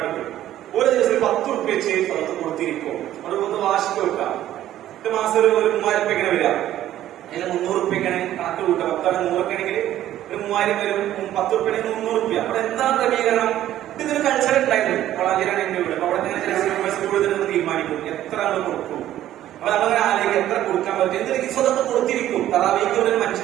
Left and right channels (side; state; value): left; quieter; 12.8 dB